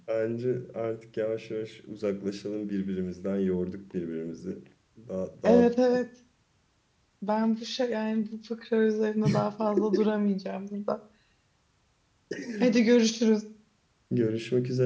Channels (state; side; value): identical; both; correlation 1.00